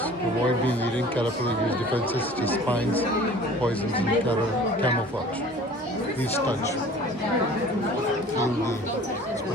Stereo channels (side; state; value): both; normal; correlation 0.46